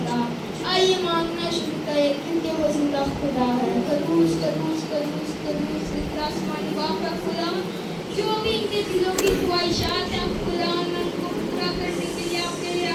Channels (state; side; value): identical; both; correlation 1.00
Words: گا۔ آئیے مانگنا شروع کریں کیونکہ وہ زندہ خدا ہے۔ قدوس قدوس قدوس قدوس آسمانی باپ ہے خدا، جو بھی ان کے دلوں کی خواہشات ہیں خدا، میں ان کو پورا کرنے کے لیے آپ کے لیے